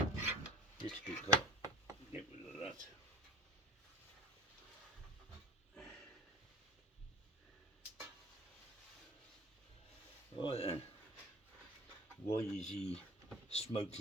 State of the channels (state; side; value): normal; both; correlation 0.41